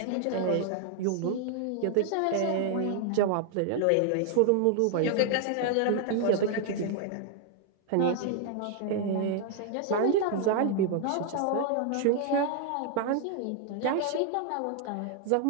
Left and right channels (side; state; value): both; different; correlation 0.00